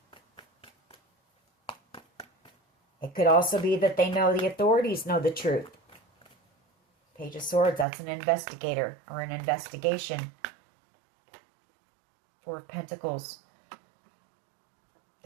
It could also be that they know the authorities know the truth. Page of Swords, that's an investigator or an investigation. Four of Pentacles.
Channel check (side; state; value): left; drops out; at 7.9 s